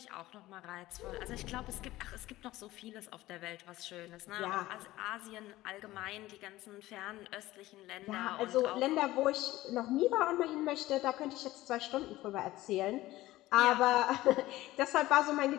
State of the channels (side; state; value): right; quieter; 16.9 dB